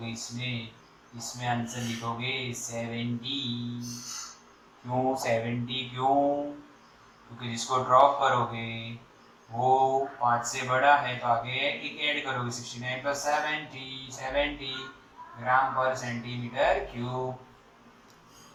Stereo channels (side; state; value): both; identical; correlation 1.00